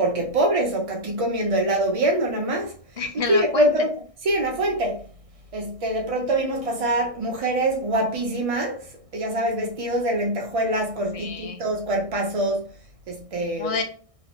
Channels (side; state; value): left; late; 1.6 ms